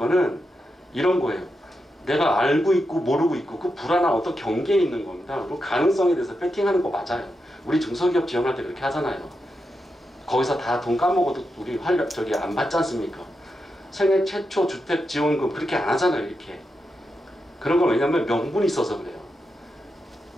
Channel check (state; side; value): normal; both; correlation 0.87